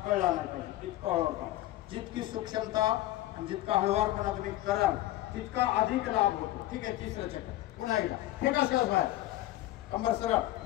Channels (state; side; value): quieter; right; 15.6 dB